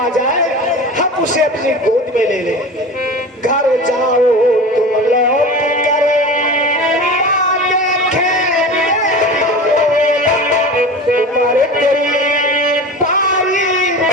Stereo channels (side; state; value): both; normal; correlation 0.32